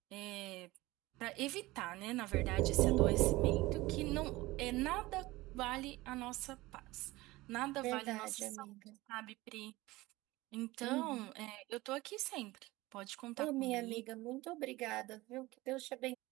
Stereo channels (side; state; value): left; quieter; 19.6 dB